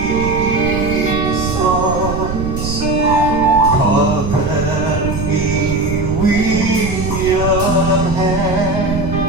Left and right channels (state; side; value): noise; right; rumble, 5 dB below the sound